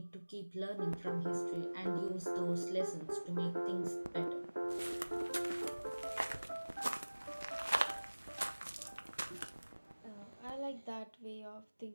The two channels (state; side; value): inverted; both; correlation -1.00